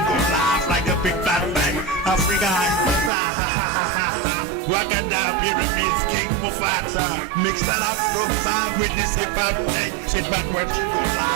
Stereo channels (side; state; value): left; drops out; at 3.1 s